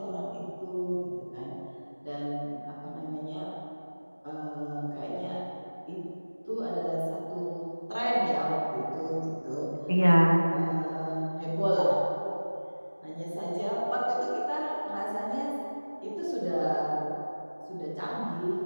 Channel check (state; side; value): inverted; both; correlation -1.00